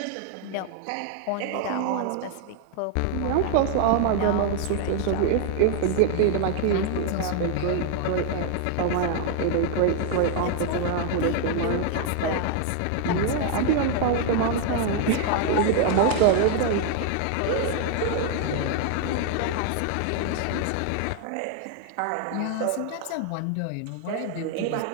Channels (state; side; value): different; both; correlation 0.00